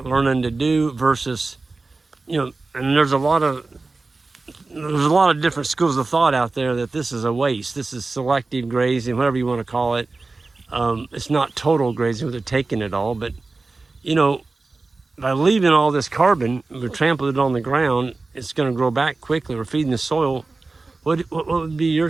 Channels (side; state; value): left; quieter; 3.6 dB